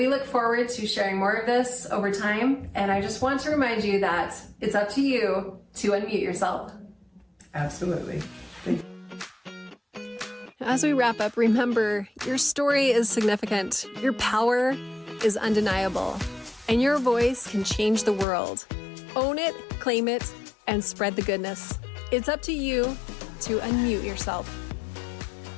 look forward to sharing more of this over time. And I just want to remind you that it's up to you to unmute yourself. Absolutely. As we wrap up, remember, your story is significant. Your power is undeniable, and your voice can change the world. Own it, claim it, and spread the goodness. It's up to you to unmute yourself.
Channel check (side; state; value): right; drops out; at 18.2 s